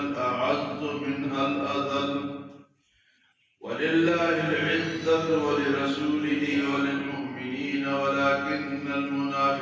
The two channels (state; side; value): identical; both; correlation 1.00